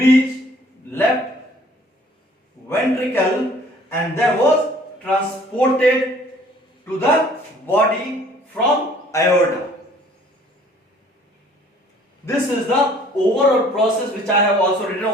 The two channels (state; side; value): normal; both; correlation 0.55